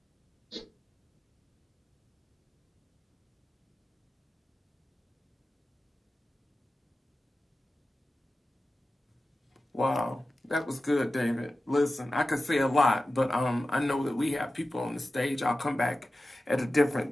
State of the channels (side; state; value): both; normal; correlation 0.94